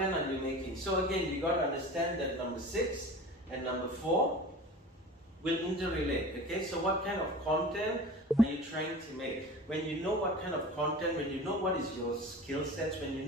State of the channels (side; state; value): both; normal; correlation 0.37